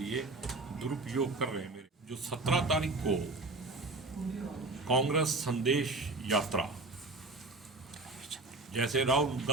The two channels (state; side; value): quieter; left; 3.2 dB